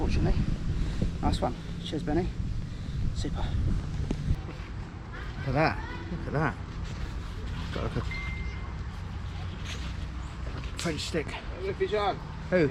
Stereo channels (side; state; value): both; identical; correlation 1.00